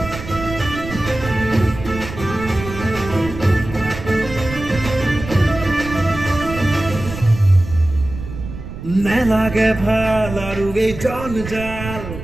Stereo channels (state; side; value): noise; right; rumble, 10 dB below the sound